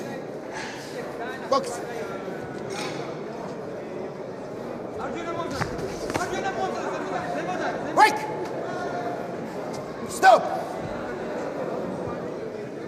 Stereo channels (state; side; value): identical; both; correlation 1.00